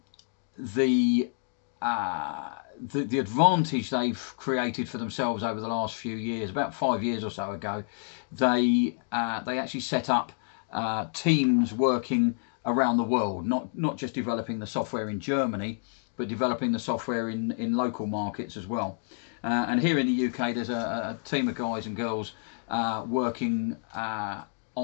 advantage they've created for themselves over the last few years, about 5 years or so ago, they actually set up teams working around the world, not just developing the software in Germany, but developing the software in local markets as well. And here in the UK, there's a team of guys and girls working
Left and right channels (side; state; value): right; silent; 59 dB below the other